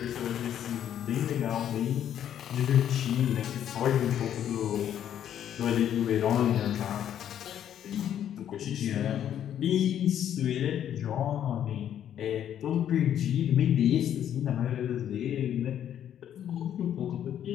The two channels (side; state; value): right; quieter; 10.2 dB